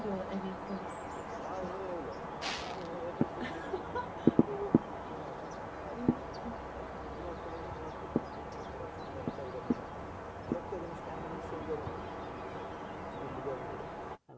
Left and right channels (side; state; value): both; identical; correlation 1.00